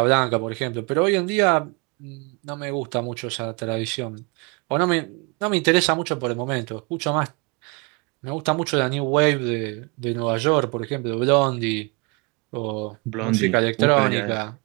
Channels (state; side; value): quieter; left; 30.7 dB